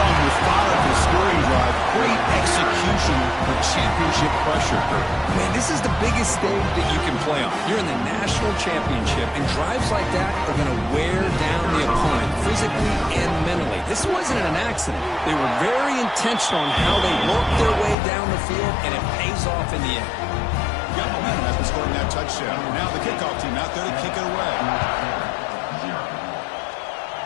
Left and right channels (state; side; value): drops out; right; at 17.9 s